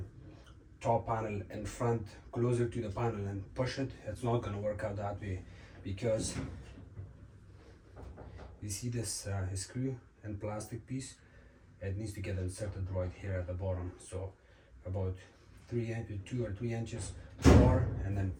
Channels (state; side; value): identical; both; correlation 1.00